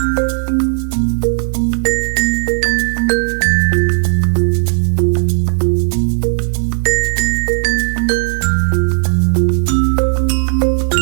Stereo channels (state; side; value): silent; left; digital silence